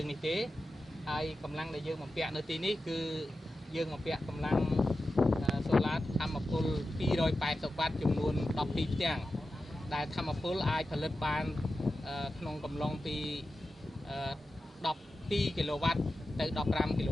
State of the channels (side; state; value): both; normal; correlation 0.92